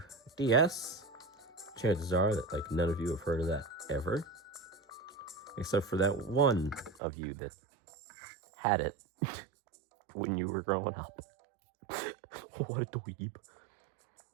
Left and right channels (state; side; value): drops out; left; at 7.0 s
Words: DS. Chances are that like none of you have heard of that ever, except for that one of you that had it when you were growing up. What a dweeb.